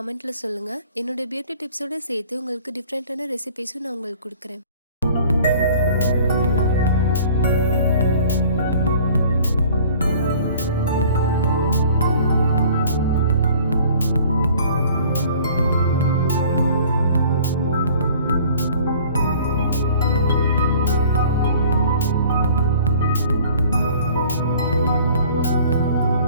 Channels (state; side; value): inverted; both; correlation -0.50